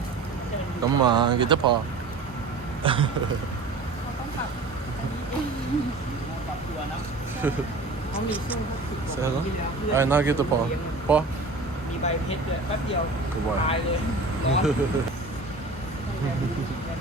Come on. Get the paw. Say hello. Alright, now get the paw. Paw. Good boy.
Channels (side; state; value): left; quieter; 3.4 dB